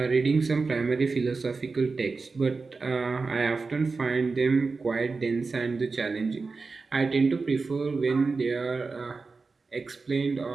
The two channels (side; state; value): left; quieter; 4.2 dB